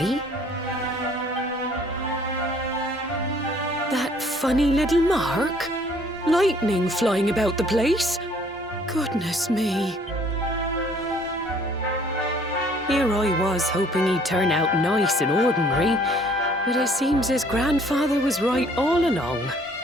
That funny little mark? Lightning flying about the place? Goodness me. Here I was hoping he'd turn out nice and ordinary, but it seems his grandfather was right all along.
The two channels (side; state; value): both; normal; correlation 0.59